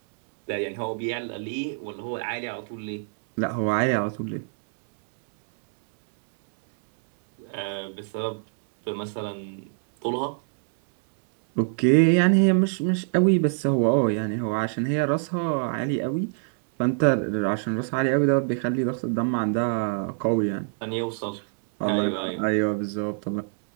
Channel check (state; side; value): silent; left; digital silence